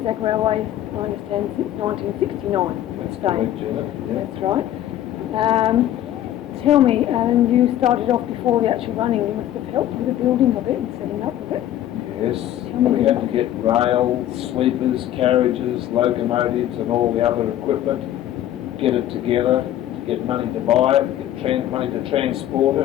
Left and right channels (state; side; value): quieter; right; 12.3 dB